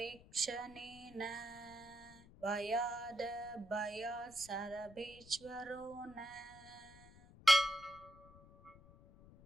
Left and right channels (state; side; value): noise; left; rumble, 21 dB below the sound